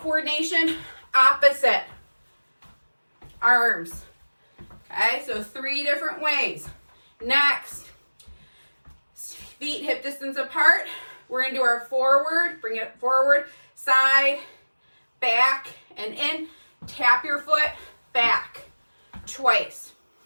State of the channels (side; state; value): both; inverted; correlation -1.00